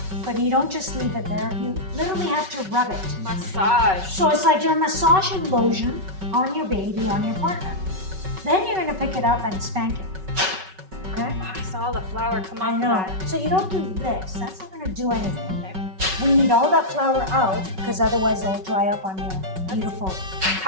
but you don't just leave it there. You literally have to rub it. Massage. So it's like you're massaging lotion on your baby, on your partner. Then you're gonna pick it up and spank it. Okay? Oh, I saw the flour come off I of know. that. So you don't do this. That's not gonna do anything. Okay. We need all that flour out because otherwise it'll dry up on your beautiful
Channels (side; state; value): left; late; 5.3 ms